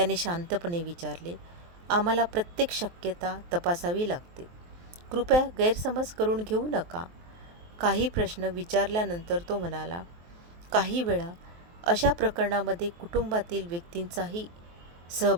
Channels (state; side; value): late; left; 23 ms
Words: शांतपणे विचारले, आम्हाला प्रत्येक शक्यता तपासावी लागते. कृपया गैरसमज करून घेऊ नका. काही प्रश्न विचारल्यानंतर तो म्हणाला, काही वेळा अशा प्रकरणामध्ये कुटुंबातील व्यक्तींचाही